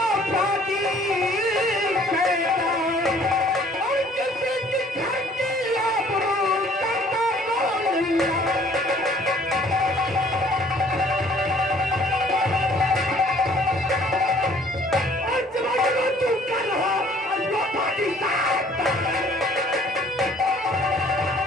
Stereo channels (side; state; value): both; normal; correlation 0.57